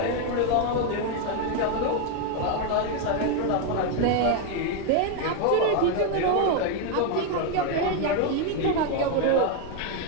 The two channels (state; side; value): different; both; correlation 0.01